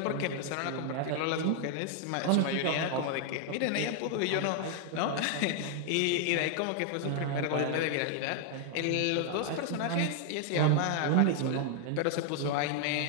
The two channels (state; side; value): different; both; correlation 0.00